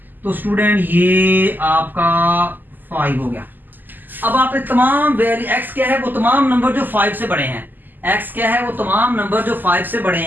तो स्टूडेंट ये आपका 5 हो गया। अब आपने तमाम वैल्यू, x क्या है वो तमाम नंबर जो 5 से बड़े हैं, x क्या है वो तमाम नंबर जो 5 से बड़े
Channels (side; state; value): left; late; 0.088 ms